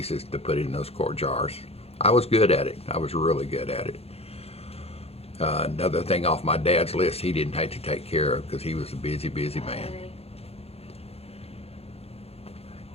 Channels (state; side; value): late; right; 0.29 ms